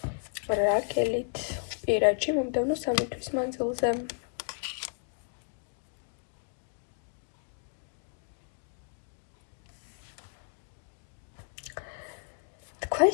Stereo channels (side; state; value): right; silent; digital silence